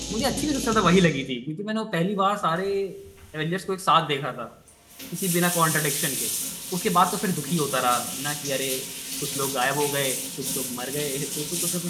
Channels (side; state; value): both; identical; correlation 1.00